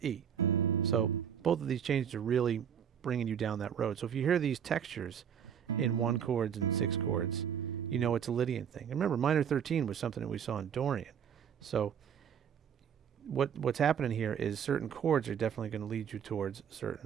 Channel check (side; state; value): left; quieter; 8.2 dB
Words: So both of these changes are really bringing you down that road. So if you hear these textures in 1 chords and 6 chords, you know it's a Lydian thing. And remember, minor 13 was something that we saw in Dorian. So what's happening here is certain chords are definitely going to lead you towards